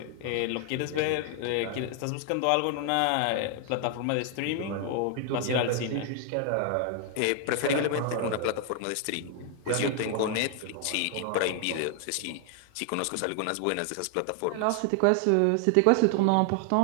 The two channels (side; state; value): both; different; correlation 0.00